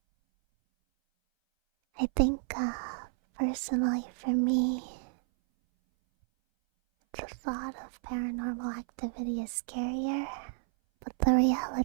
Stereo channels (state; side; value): silent; left; 57 dB below the other